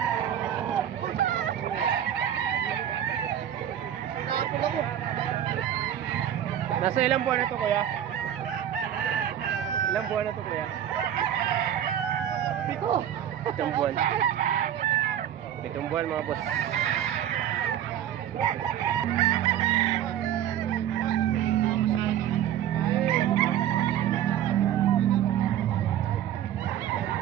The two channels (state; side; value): quieter; left; 10.5 dB